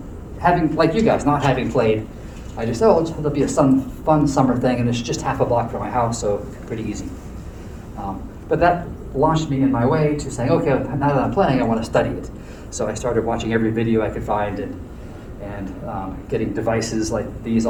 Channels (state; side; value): identical; both; correlation 1.00